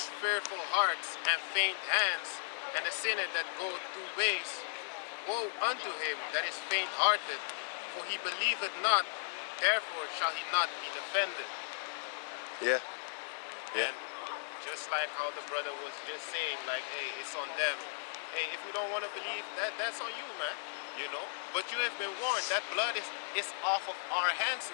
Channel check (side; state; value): right; silent; 54 dB below the other